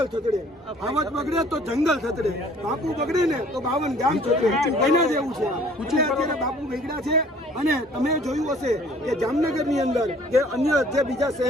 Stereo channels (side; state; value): both; normal; correlation 0.55